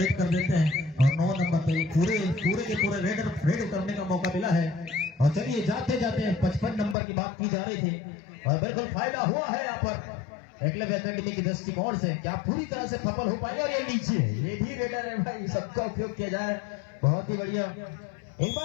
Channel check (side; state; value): right; drops out; at 7.0 s